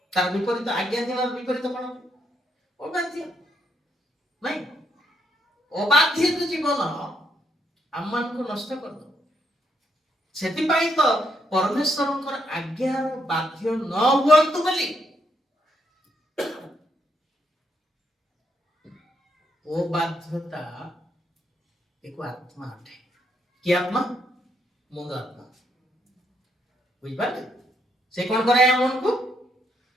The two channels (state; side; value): normal; both; correlation 0.75